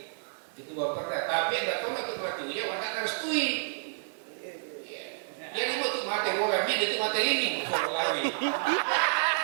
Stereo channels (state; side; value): silent; left; digital silence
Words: ketua perda. Tapi anda tahu nggak ketua itu ya anda harus tui. Dia ini mau tuh mati bola, dia itu mati ini lagi.